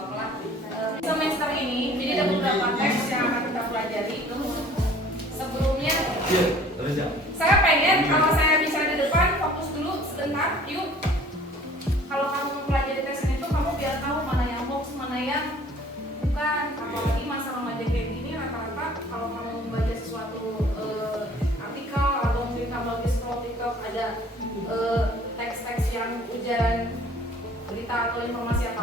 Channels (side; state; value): both; normal; correlation 0.51